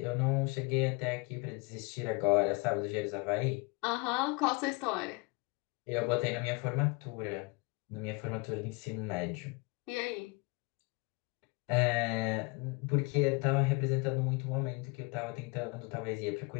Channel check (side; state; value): right; quieter; 26.8 dB